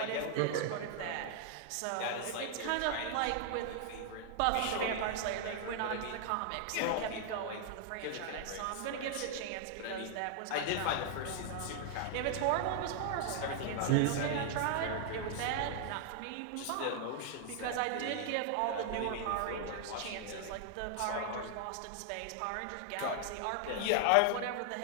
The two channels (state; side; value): different; both; correlation 0.00